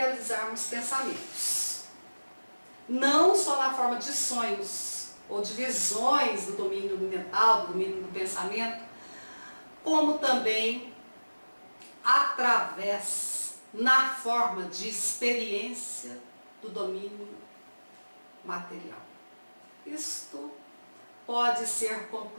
pensamentos. Não só na forma de sonhos ou de visões do domínio mental, do domínio do pensamento, como também através, na forma de experiência do domínio material. Isto pode ser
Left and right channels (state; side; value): inverted; both; correlation -1.00